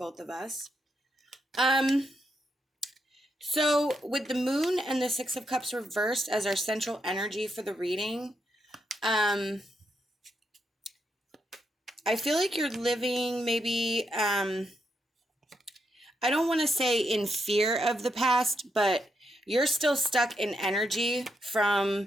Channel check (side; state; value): both; normal; correlation 0.81